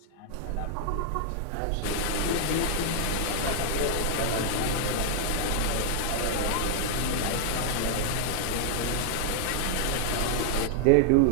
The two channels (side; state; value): both; different; correlation -0.01